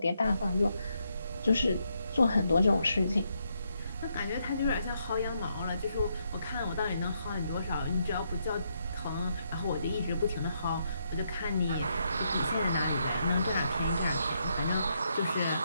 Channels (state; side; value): inverted; both; correlation -0.78